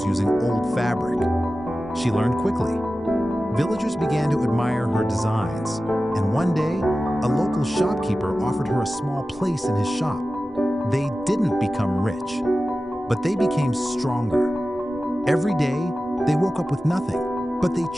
using old fabric. She learned quickly. Villagers began to admire her designs, and one day, a local shopkeeper offered her a small place in his shop. They didn't become rich, but they became stronger. Every day, they woke up with nothing, but they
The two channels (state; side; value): normal; both; correlation 0.95